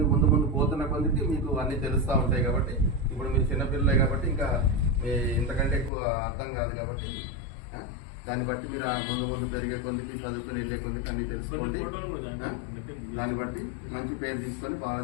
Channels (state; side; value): drops out; right; at 5.9 s